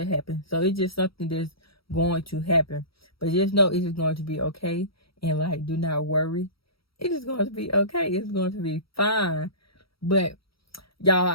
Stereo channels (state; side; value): late; right; 0.75 ms